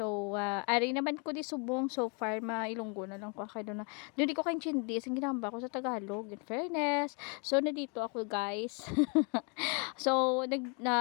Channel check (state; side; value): quieter; right; 35.3 dB